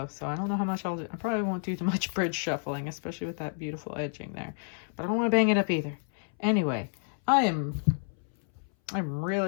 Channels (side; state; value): right; silent; 58 dB below the other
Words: so I don't know how much I'll do. I probably won't do too much bridge shuffling, especially with that beautiful edging there, but I don't want to bang it up either. Anyway, I'm